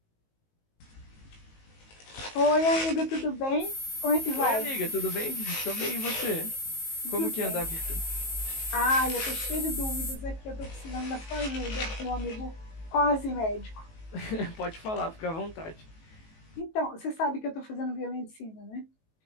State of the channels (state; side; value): late; right; 19 ms